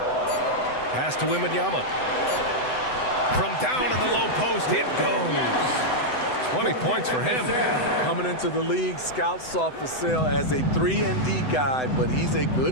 Pass to Wembanyama. From down in the low post, it goes. 20 points for him. Coming into the league, scouts saw Vassell as a 3-and-D guy, but he's a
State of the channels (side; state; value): right; late; 7.9 ms